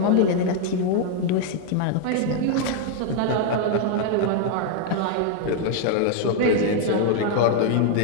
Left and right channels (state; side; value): different; both; correlation 0.00